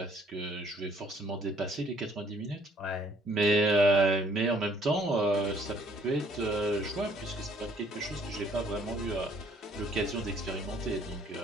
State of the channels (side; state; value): both; normal; correlation 0.62